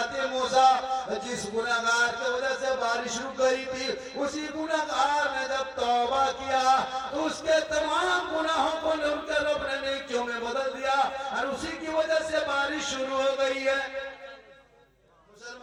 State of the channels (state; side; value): identical; both; correlation 1.00